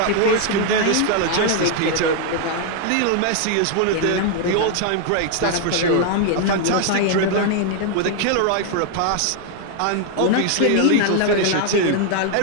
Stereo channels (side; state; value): both; different; correlation 0.00